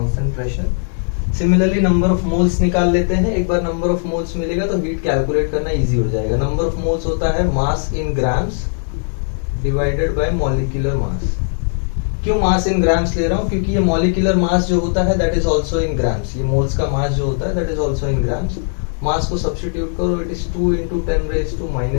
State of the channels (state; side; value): silent; right; 60 dB below the other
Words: pressure. Similarly number of moles निकाल लेते हैं. एक बार नंबर ऑफ मोल्स मिलेगा तो हीट कैलकुलेट करना इजी हो जाएगा. नंबर ऑफ मोल्स होता है mass in grams divided by molecular mass. क्यों मास इन ग्राम्स ले रहा हूँ? क्योंकि ये मॉलिक्यूलर मास जो होता है that is also in grams. ये मोल्स का मास जो होता है that is also in grams. Mass को सब्स्टिट्यूट करो, it is 2 into 10 raised to